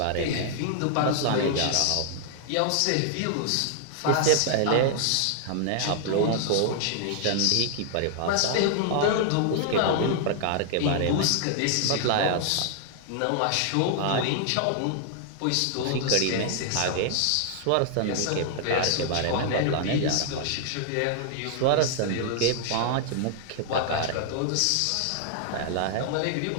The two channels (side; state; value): both; different; correlation 0.00